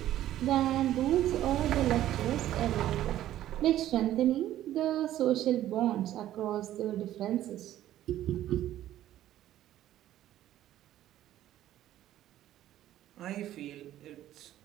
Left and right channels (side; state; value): left; quieter; 13.0 dB